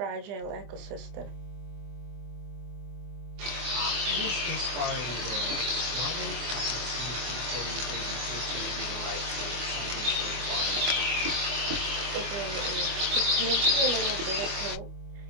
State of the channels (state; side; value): late; left; 24 ms